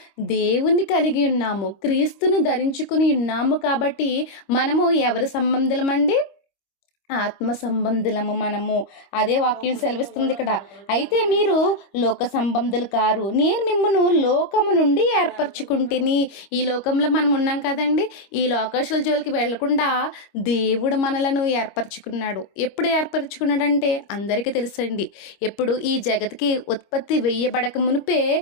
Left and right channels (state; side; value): late; right; 25 ms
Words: దేవుని కలిగి ఉన్నాము, క్రీస్తుని ధరించుకుని ఉన్నాము. కాబట్టి మనము ఎవరి సంబంధులమండి? ఆత్మ సంబంధులము మనము. అదే వాక్యం సెలవిస్తుంది ఇక్కడ. అయితే మీరు లోక సంబంధులు కారు, నేను మిమ్మను లోకము నుండి ఏర్పరచుకుంటేని. ఈ లోకంలో మనం ఉన్నాం కదండి, ఈ లోకేశ్వర జోలికి వెళ్లకుండా దేవుడు మనలను ఏర్పరచుకున్నాడు. ఎప్పుడు ఏర్పరచుకున్నాడంటే అందరికీ తెలుసండి, ఎప్పుడు ఈ జగత్కి ఉత్పత్తి వేయబడక మునిపే